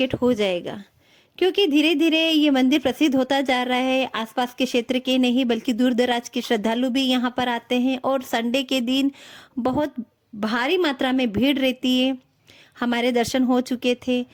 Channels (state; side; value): identical; both; correlation 1.00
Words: हो जाएगा क्योंकि धीरे धीरे ये मंदिर प्रसिद्ध होता जा रहा है। आसपास के क्षेत्र के नहीं बल्कि दूर दराज के श्रद्धालु भी यहाँ पर आते हैं और संडे के दिन बहुत भारी मात्रा में भीड़ रहती है। हमारे दर्शन हो चुके थे,